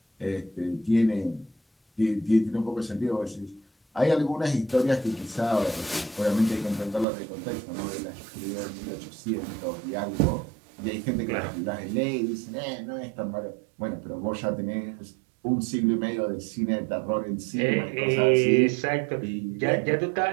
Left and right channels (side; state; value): left; drops out; at 7.1 s